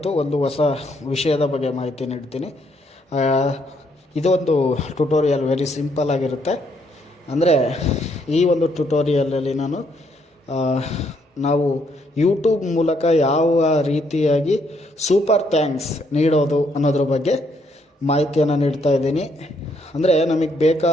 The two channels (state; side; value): normal; both; correlation 0.72